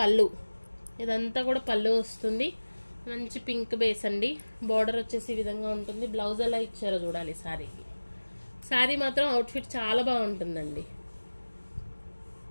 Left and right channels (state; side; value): inverted; both; correlation -1.00